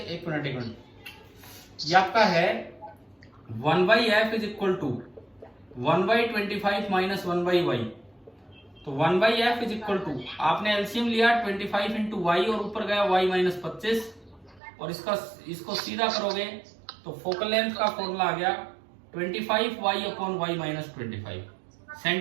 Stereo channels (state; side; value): drops out; left; at 14.6 s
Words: एक मिनट, ये आपका है 1/f is equal to 1/25 minus 1/y, तो 1/f इज इक्वल टू, आपने एलसीएम लिया 25 इंटू वाई और ऊपर गया y -25, और इसको सीधा करोगे तो फोकल लेंथ का फॉर्मूला आ गया 25y/y-25